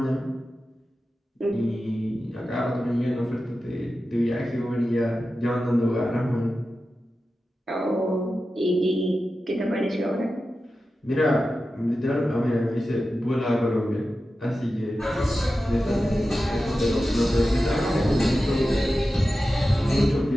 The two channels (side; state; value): both; normal; correlation 0.93